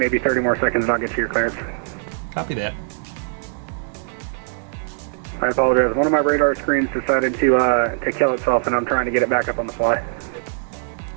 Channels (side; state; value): left; silent; 63 dB below the other